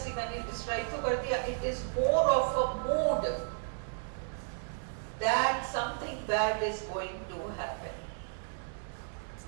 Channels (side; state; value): left; silent; digital silence